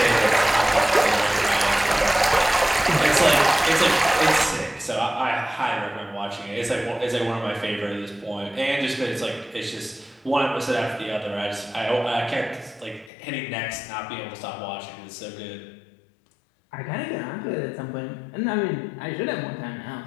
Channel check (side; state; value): right; drops out; at 13.1 s